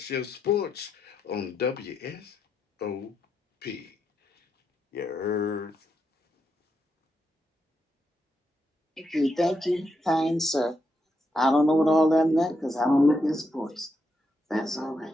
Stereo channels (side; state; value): both; normal; correlation 0.82